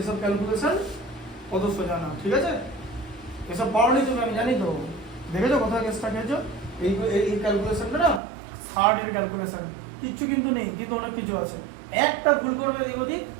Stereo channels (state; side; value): drops out; left; at 8.2 s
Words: এসব ক্যালকুলেশন কত সোজা না, ঠিক আছে? এসব পড়নি তুমি, আমি জানি তো, দেখেছো কোথায় কেসটা খেয়েছো? এই ক্যালকুলেশনটা না থার্ড এর ক্যালকুলেশন, কিচ্ছু কিন্তু নেই, কিন্তু অনেক কিছু আছে। একটা ভুল করবে এদিক ওদিক,